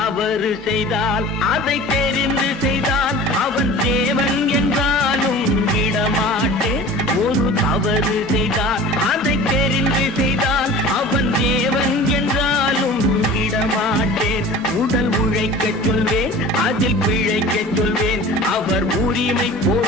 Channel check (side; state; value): both; normal; correlation 0.40